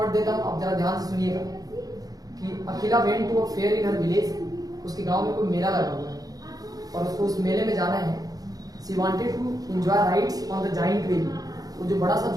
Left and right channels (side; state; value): left; late; 0.18 ms